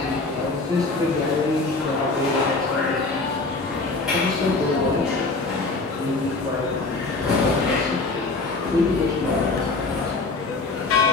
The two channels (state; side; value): quieter; right; 3.6 dB